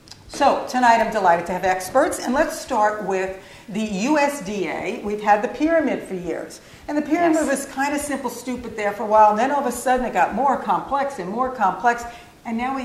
So tonight I'm delighted to have experts, and let's start with the USDA. We've had the pyramid for years, and the pyramid was kind of simple, stupid there for a while, and then all of a sudden it got more complex and more complex. And now we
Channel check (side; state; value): both; identical; correlation 1.00